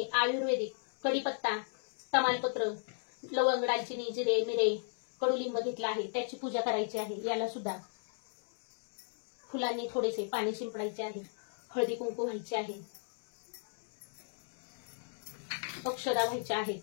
आयुर्वेदिक कढीपत्ता, तमालपत्र, लवंग, दालचिनी, जिरे, मिरे, कडुलिंब घेतला आहे त्याची पूजा करायची आहे. याला सुद्धा फुलांनी थोडेसे पाणी शिंपडायचे आहे. हळदी कुंकू व्हायचे आहे, अक्षदा व्हायच्या आहेत,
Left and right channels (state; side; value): silent; right; digital silence